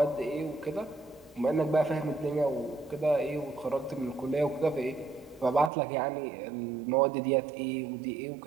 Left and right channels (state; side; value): drops out; left; at 5.7 s